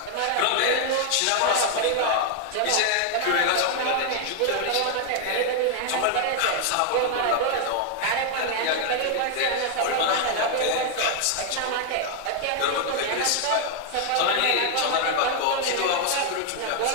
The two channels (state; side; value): different; both; correlation 0.00